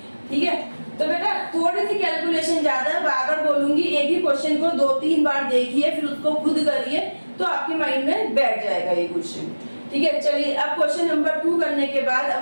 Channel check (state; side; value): inverted; both; correlation -1.00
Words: ठीक है। तो बेटा थोड़ी सी कैलकुलेशन ज्यादा है, बार-बार बोलूंगी, एक ही क्वेश्चन को 2-3 बार देखिए, फिर उसको खुद करिए, तो आपके माइंड में बैठ जाएगा ये क्वेश्चन, ठीक है। चलिए अब क्वेश्चन नंबर 2 करने के बाद अब